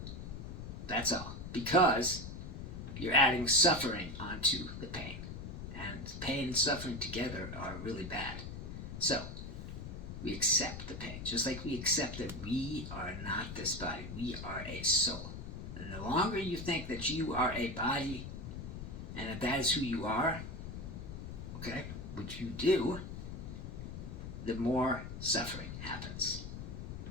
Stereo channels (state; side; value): noise; left; rumble, 8 dB below the sound